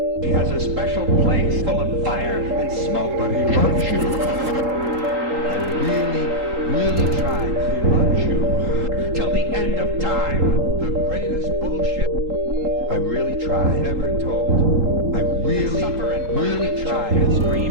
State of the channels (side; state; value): left; late; 3.8 ms